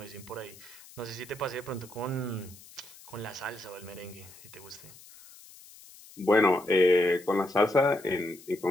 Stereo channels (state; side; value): noise; left; hiss, 21 dB below the sound